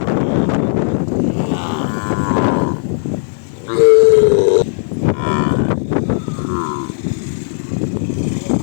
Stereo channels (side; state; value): right; silent; 56 dB below the other